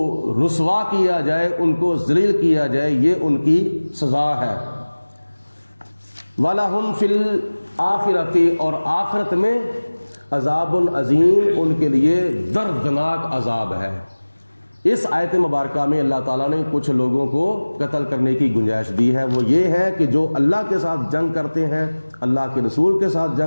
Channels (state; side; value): inverted; both; correlation -1.00